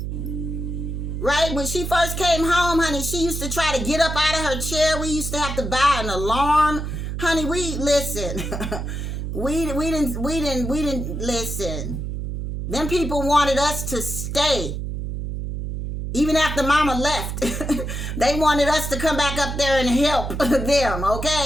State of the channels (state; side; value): noise; right; hum, 4 dB below the sound